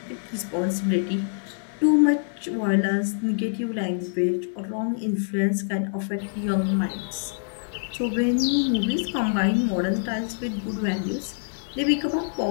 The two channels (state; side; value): silent; right; 61 dB below the other